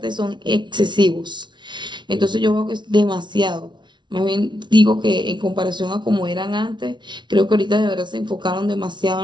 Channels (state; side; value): late; left; 0.22 ms